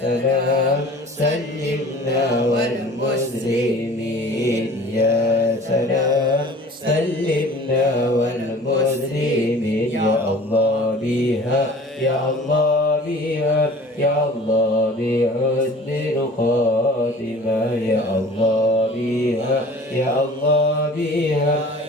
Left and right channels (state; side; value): normal; both; correlation 0.45